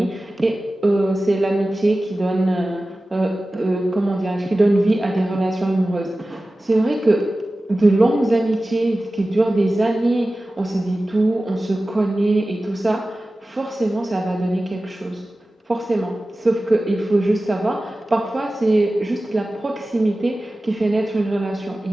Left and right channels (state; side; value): normal; both; correlation 0.96